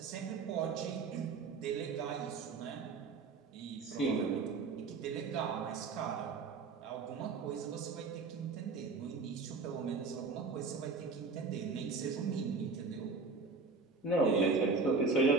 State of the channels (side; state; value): left; quieter; 4.4 dB